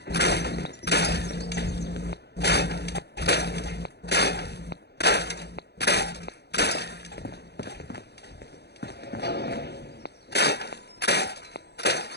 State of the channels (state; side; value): late; right; 0.48 ms